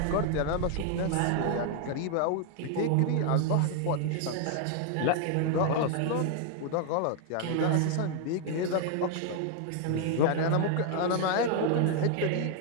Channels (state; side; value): different; both; correlation 0.00